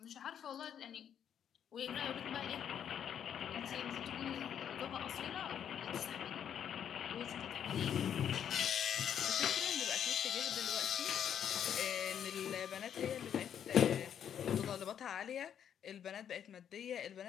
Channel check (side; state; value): right; quieter; 9.0 dB